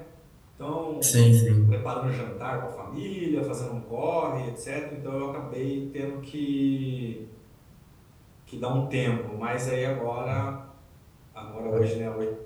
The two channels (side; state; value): both; identical; correlation 1.00